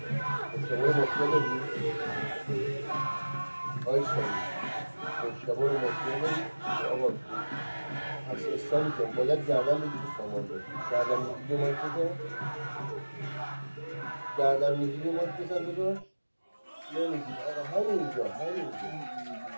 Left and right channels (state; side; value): inverted; both; correlation -1.00